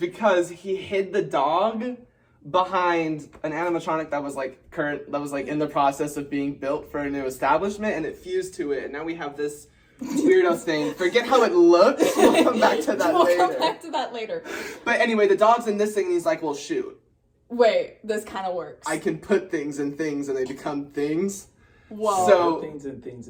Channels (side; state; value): both; identical; correlation 1.00